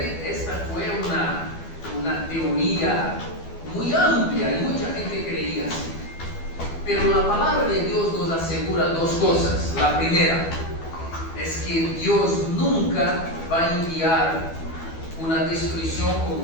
esta fue una teoría muy amplia y mucha gente creía así. Pero la palabra de Dios nos asegura dos cosas. La primera es que Dios nunca va a enviar una destrucción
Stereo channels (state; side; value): late; right; 12 ms